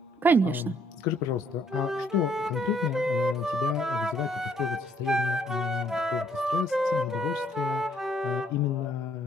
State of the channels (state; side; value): normal; both; correlation 0.67